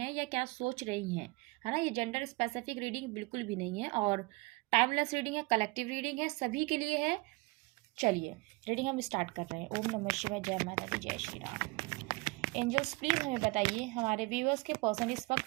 या क्या सोच रही हैं, है ना। ये जेंडर स्पेसिफिक रीडिंग बिल्कुल भी नहीं है और टाइमलेस रीडिंग है, कलेक्टिव रीडिंग है, सभी के लिए है। चलिए रीडिंग हम स्टार्ट कर रहे हैं। ओम नमः शिवाय, जय माता दी, जय श्री राम। एंजल्स प्लीज हमें बताइए हमारे व्यूअर्स के पर्सन इस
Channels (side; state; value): left; quieter; 25.5 dB